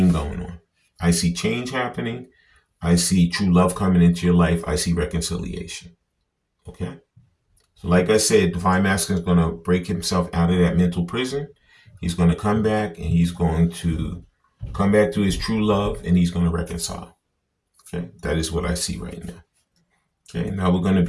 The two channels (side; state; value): both; identical; correlation 1.00